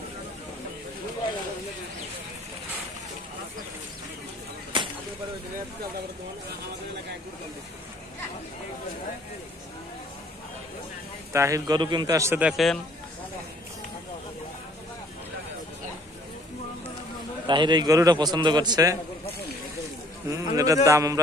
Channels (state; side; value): normal; both; correlation 0.57